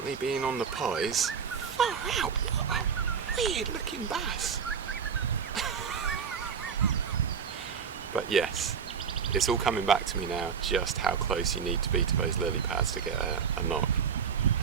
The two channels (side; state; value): left; quieter; 6.6 dB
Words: been on the pies. Far out! What a weird looking bass! But yes, it's all coming back to me now, just how close you need to be to those lily pads to get a knock.